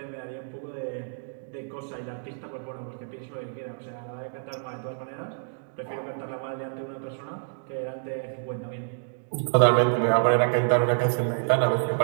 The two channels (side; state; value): left; silent; digital silence